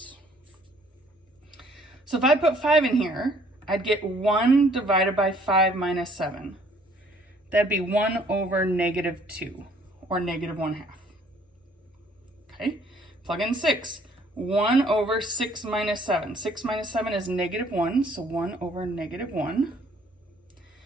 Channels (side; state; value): both; normal; correlation 0.61